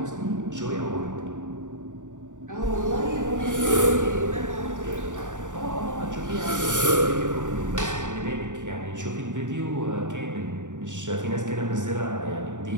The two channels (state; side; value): late; left; 0.86 ms